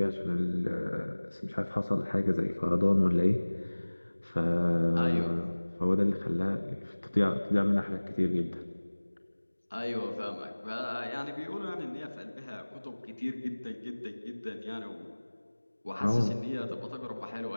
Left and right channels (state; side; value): inverted; both; correlation -1.00